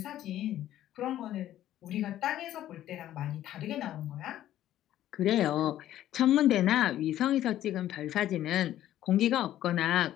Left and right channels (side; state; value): right; quieter; 12.8 dB